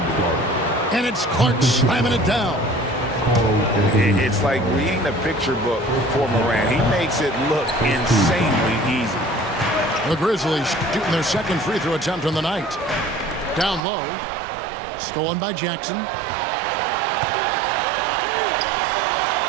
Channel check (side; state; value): left; drops out; at 13.9 s